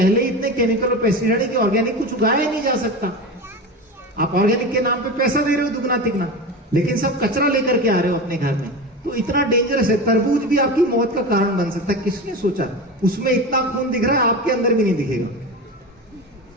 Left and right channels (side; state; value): both; normal; correlation 0.26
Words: ही इतने केमिकल और पेस्टिसाइड है कि ऑर्गेनिक कुछ उगाया ही नहीं जा सकता। आप ऑर्गेनिक के नाम पे पैसा दे रहे हो दुगना तिगना, लेकिन सब कचरा लेकर के आ रहे हो अपने घर में। तो इतना डेंजरस है। तरबूज भी आपकी मौत का कारण बन सकता है। किसने सोचा? उसमें इतना खून दिख रहा है, आपके अंदर भी नहीं दिखेगा।